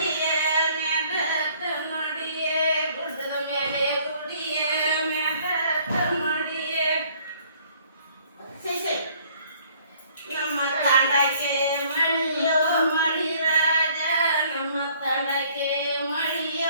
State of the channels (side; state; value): both; inverted; correlation -0.60